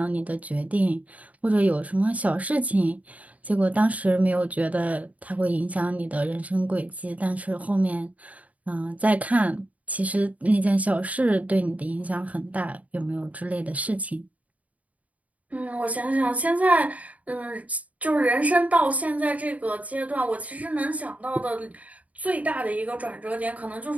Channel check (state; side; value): late; left; 0.070 ms